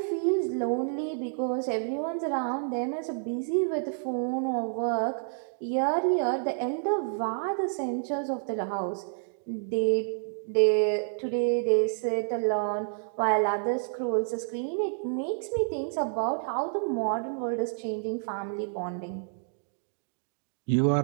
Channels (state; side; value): silent; left; digital silence